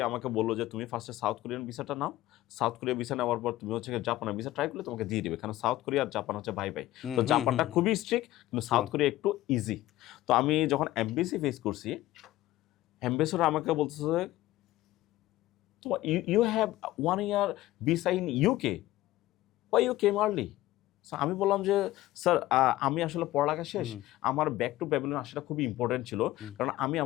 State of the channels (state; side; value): quieter; right; 16.0 dB